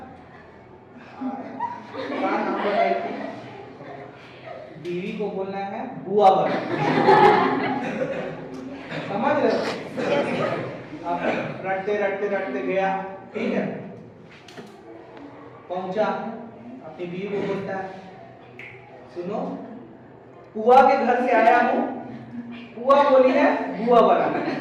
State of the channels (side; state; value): both; identical; correlation 1.00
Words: बीवी को बोलना है बुआ बनाना, समझ रहे हो? अब रटते रटते रटते गया, ठीक है। पहुंचा, अपनी बीवी को बोलता है सुनो, पुआ के घर से आया हूँ, पुआ बोली है बुआ बनाना,